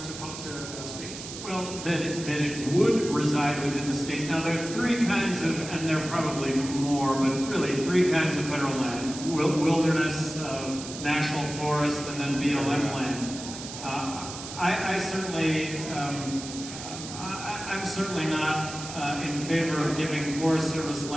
to the states? Well, that it would reside within the states. Now, there are three kinds of, and there are probably more, but really three kinds of federal land: wilderness, national forest, and then BLM land. I'm certainly not in favor of giving Forest Service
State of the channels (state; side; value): noise; right; hiss, 10 dB below the sound